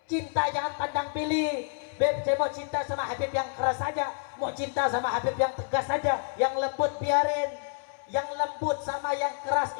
Cinta jangan pandang pilih. Beb, saya mau cinta sama Habib yang keras saja, mau cinta sama Habib yang tegas saja, yang lembut biarin. Yang lembut sama yang keras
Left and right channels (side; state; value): right; silent; 59 dB below the other